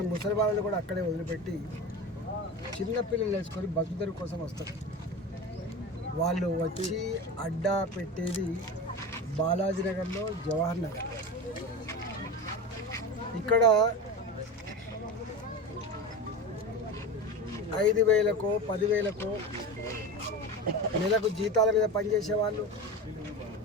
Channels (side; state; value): both; normal; correlation 0.27